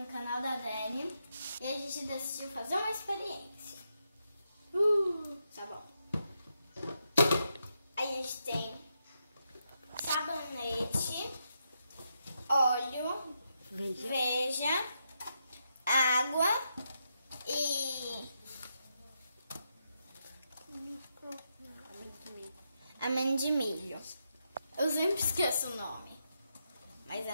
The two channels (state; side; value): inverted; both; correlation -0.82